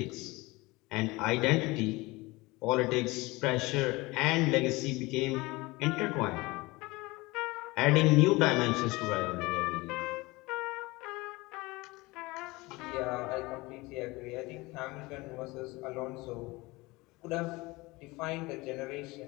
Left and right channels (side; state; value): right; quieter; 22.3 dB